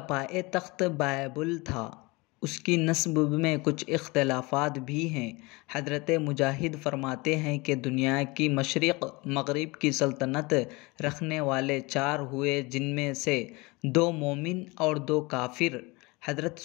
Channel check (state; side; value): quieter; right; 24.9 dB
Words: پائے تخت بابل تھا۔ اس کی نسب میں کچھ اختلافات بھی ہیں۔ حضرت مجاہد فرماتے ہیں کہ دنیا کی مشرق مغرب کی سلطنت رکھنے والے 4 ہوئے، جن میں سے 2 مومن اور 2 کافر، حضرت